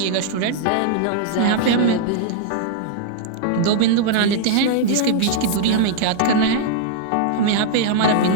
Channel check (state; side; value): different; both; correlation -0.01